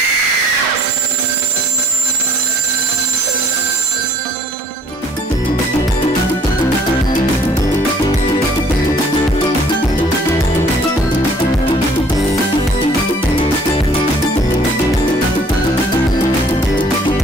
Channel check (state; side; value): normal; both; correlation 0.58